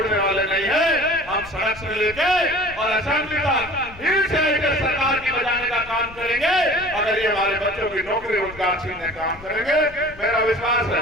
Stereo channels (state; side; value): noise; left; rumble, 19 dB below the sound